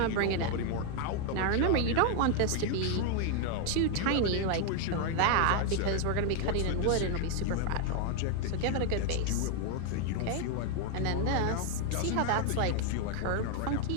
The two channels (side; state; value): both; different; correlation 0.00